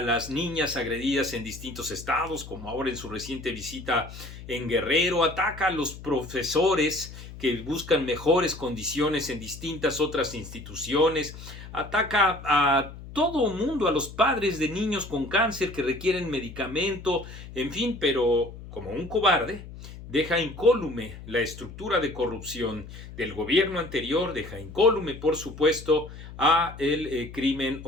niñas agredidas en distintos estados, como ahora en su reciente visita en Guerrero, ataca a los profesores que buscan mejores condiciones en distintas otras instituciones, ataca a todo mundo, a los padres de niños con cáncer que requieren medicamento, en fin, pero como un cobarde, deja incólume la estructura de corrupción del gobierno anterior, deja incólume, por supuesto, a el crimen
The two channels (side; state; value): left; noise; hum, 14 dB below the sound